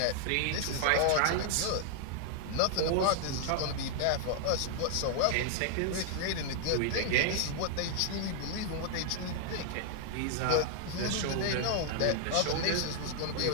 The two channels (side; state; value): both; different; correlation -0.01